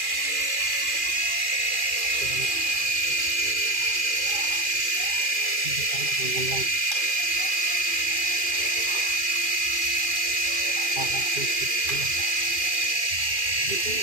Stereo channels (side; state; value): left; late; 2.4 ms